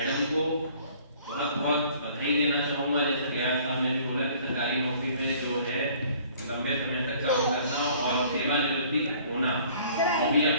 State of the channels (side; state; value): both; inverted; correlation -0.55